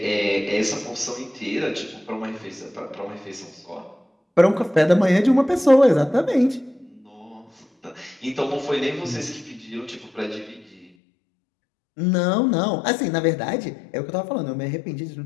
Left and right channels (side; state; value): right; drops out; at 10.9 s